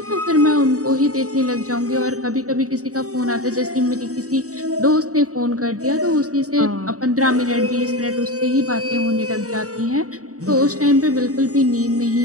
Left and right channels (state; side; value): late; left; 0.66 ms